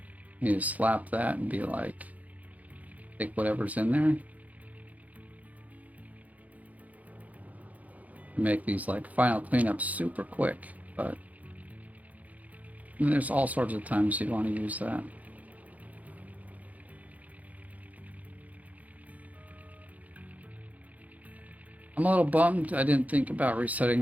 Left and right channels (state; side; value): late; left; 0.075 ms